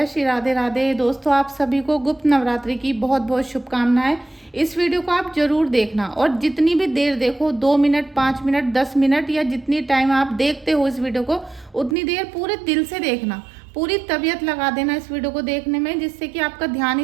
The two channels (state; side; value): drops out; left; at 12.0 s